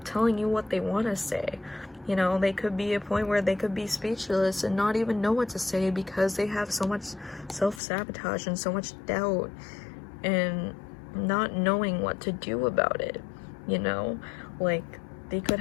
telling you what they want to say. You know, they could be a point where they could be speechless and not even know what to say because they have so much self-sabotage and so much doubt and not knowing what to do about it, you know? Like, they could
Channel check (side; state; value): right; drops out; at 7.8 s